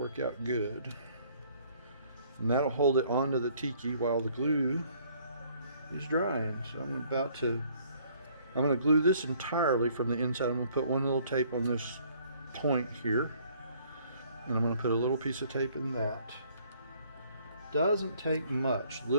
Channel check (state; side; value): inverted; both; correlation -0.61